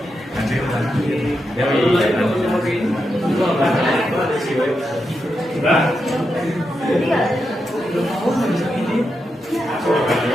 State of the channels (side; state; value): both; normal; correlation 0.86